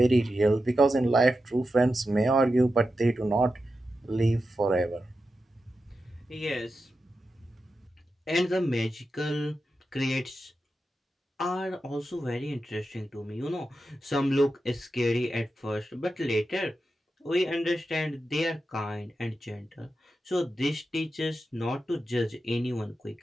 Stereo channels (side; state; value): both; normal; correlation 0.90